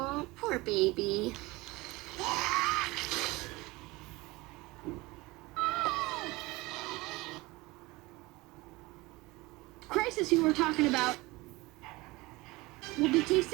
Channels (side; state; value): left; quieter; 21.9 dB